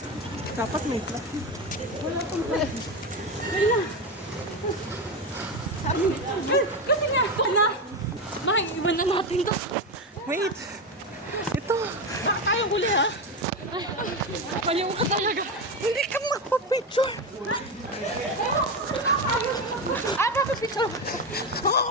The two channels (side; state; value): both; normal; correlation 0.16